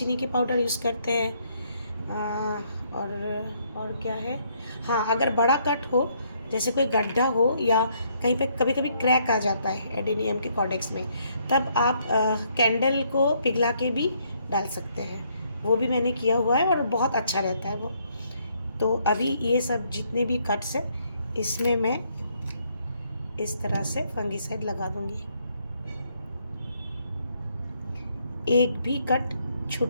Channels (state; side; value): inverted; both; correlation -0.70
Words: के पाउडर यूज़ करते हैं। और क्या है, हाँ, अगर बड़ा कट हो, जैसे कोई गड्ढा हो या कहीं पे कभी कभी क्रैक आ जाता है एडेनियम के कॉडेक्स में, तब आप कैंडल को पिघला के भी डाल सकते हैं। वो भी मैंने किया हुआ है और बहुत अच्छा रहता है वो। तो अभी ये सब जितने भी कट्स हैं, इसमें मैं इस तरह से फंगीसाइड लगा दूंगी। एक भी कट